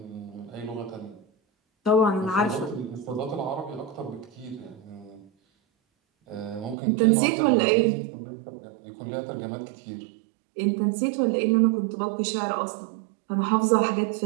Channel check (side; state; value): left; drops out; at 6.8 s